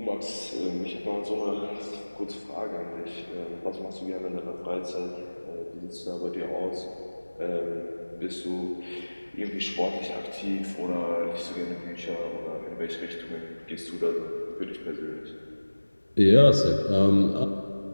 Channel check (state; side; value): inverted; both; correlation -1.00